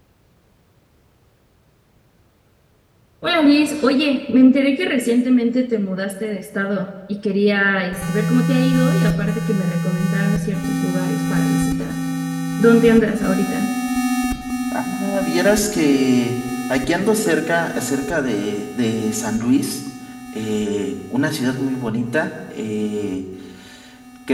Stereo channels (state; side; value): identical; both; correlation 1.00